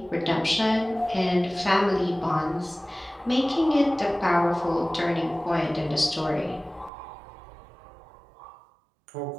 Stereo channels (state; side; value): drops out; left; at 6.9 s